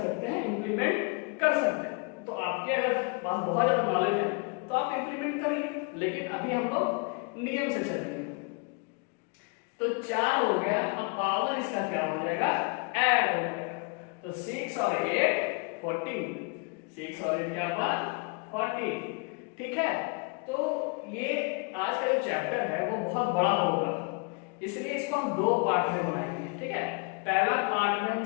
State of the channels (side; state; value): right; quieter; 32.2 dB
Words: हैं, इंप्लीमेंट कर सकते हैं। तो आपके अगर पास बहुत ज्यादा नॉलेज है तो आप इंप्लीमेंट करिए, लेकिन अभी हम लोग नियम से चलेंगे। तो 4 हो गया, अब पावर इसका क्या हो जाएगा, ऐड हो जाएगा। तो 6 और 8 14, 6 और 8 क्या हुआ 40, ठीक है। तो ये आज का जो चैप्टर है वो बहुत बड़ा होगा, इसलिए इसको हम 2 पार्ट में बनाएंगे, ठीक है। पहला पार्ट में हम